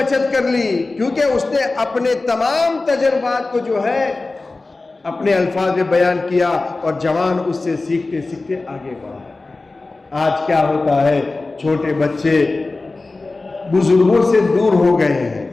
کر لی کیونکہ اس نے اپنے تمام تجربات کو جو ہے اپنے الفاظ میں بیان کیا اور جوان اس سے سیکھتے سیکھتے آگے بڑھا. آج کیا ہوتا ہے؟ چھوٹے بچے بزرگوں سے دور ہو گئے ہیں.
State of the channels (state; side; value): quieter; right; 3.4 dB